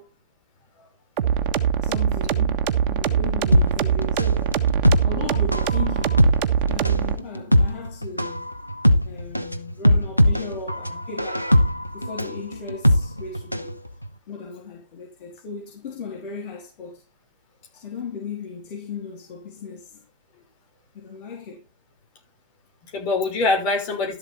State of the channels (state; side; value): inverted; both; correlation -0.65